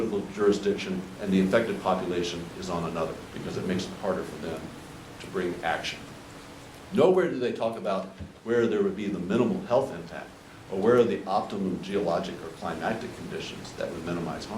jurisdiction and the affected population is on another, because it makes it harder for them to bring action. Nowhere do they talk about where there would be the minimal health impact, or where are the optimum geologic or climatic conditions that would minimize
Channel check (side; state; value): both; identical; correlation 1.00